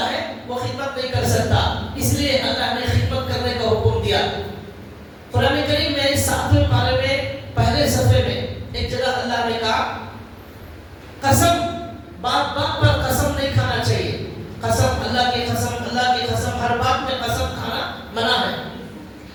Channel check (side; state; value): both; identical; correlation 1.00